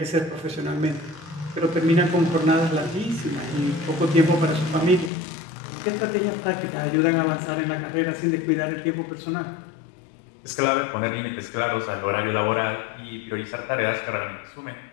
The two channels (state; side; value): drops out; right; at 5.1 s